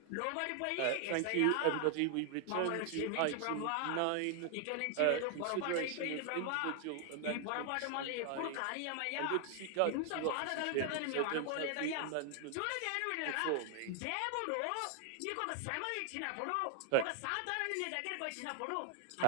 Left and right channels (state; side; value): different; both; correlation 0.00